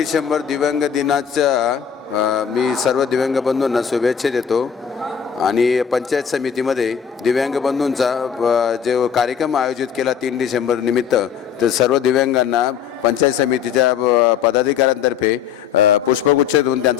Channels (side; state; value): right; quieter; 7.8 dB